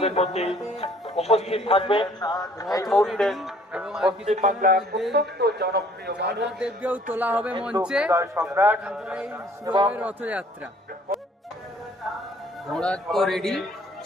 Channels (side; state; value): both; normal; correlation 0.58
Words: মধ্যে উপস্থিত থাকবেন এই মুহূর্তে পশ্চিম বাংলার অত্যন্ত জনপ্রিয় দেবকেও তোলা হবে মঞ্চে। সম্রাট এবং রথযাত্রা ঘোড়া তো রেডি,